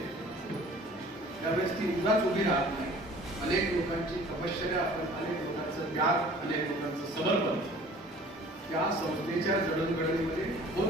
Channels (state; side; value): normal; both; correlation 0.49